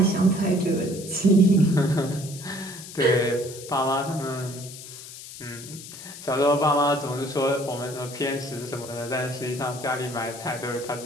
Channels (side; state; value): left; noise; hiss, 14 dB below the sound